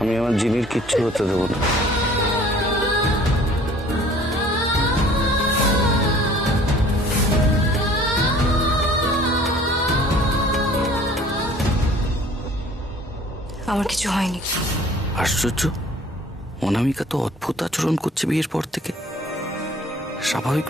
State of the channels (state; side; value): normal; both; correlation 0.52